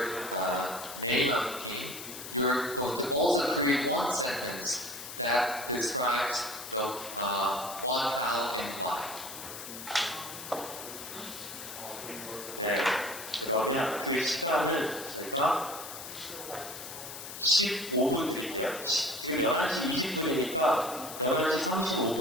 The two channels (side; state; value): left; noise; hiss, 10 dB below the sound